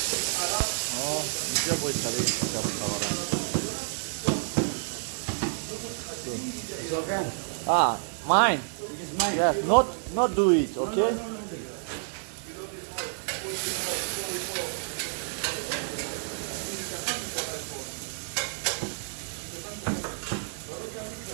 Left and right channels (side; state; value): left; silent; digital silence